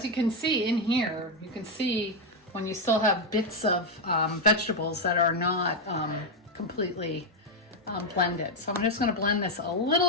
you can see in here, you can see when you still have bits of vegetables that are not completely blended. So I'm just going to blend this a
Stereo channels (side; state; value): both; normal; correlation 0.04